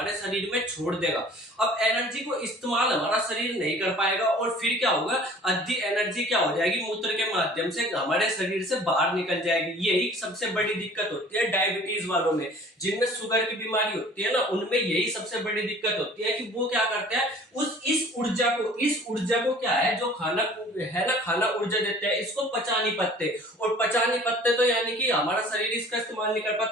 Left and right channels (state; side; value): normal; both; correlation 0.48